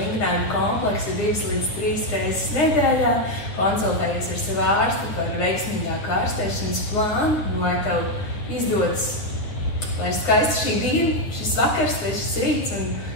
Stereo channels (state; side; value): late; right; 9.4 ms